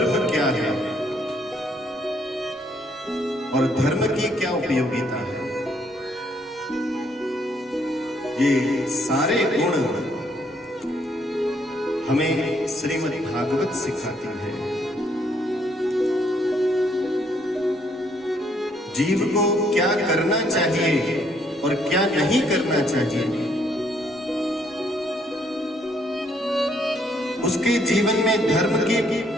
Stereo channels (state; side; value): normal; both; correlation 0.69